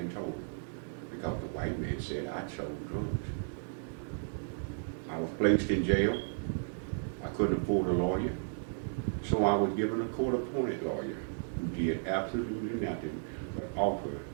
told her, because the white man said I sold drugs. I was placed in jail. I couldn't afford a lawyer, so I was given a court-appointed lawyer who did absolutely nothing but offer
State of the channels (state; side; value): silent; left; digital silence